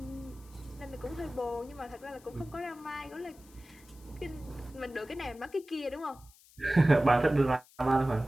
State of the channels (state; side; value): noise; left; hiss, 26 dB below the sound